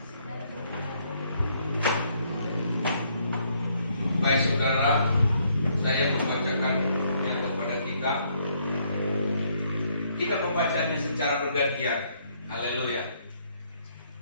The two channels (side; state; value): both; inverted; correlation -0.69